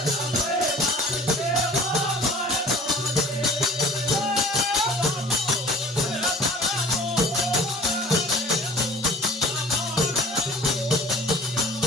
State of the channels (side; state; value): both; normal; correlation 0.47